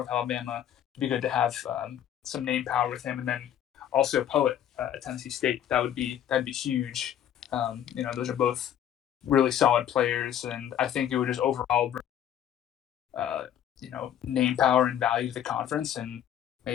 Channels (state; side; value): quieter; right; 10.3 dB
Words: Alabama, it'd be good to have some name power with him, and then also Poet at Tennessee State. That'd be huge. Those are both really solid players, and I think it would just overall bring name power and value to the conference, and